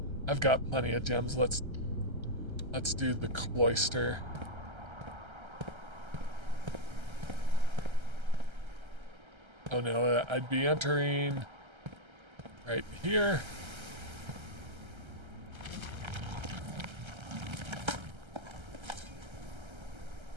I've got plenty of gems. Let's do the cloister. Oh no, I'd be entering right here.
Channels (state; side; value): late; left; 1.3 ms